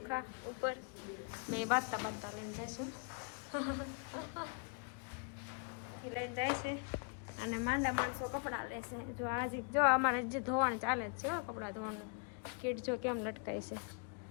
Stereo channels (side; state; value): right; quieter; 38.7 dB